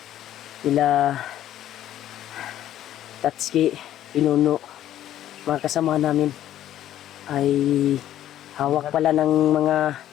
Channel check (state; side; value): quieter; right; 12.2 dB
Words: Nila Tatsuki, Pinuno, mga kasama namin ay hawak pala ng mga